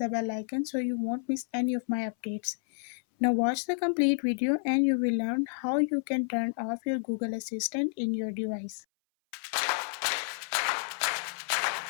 bell icon so you won't miss any of my updates. Now watch the complete video and you will learn how you can turn off your Google Assistant in your device.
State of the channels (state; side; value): silent; right; 58 dB below the other